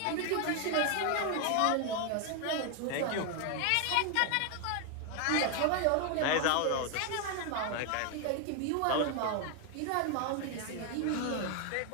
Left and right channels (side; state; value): both; different; correlation 0.01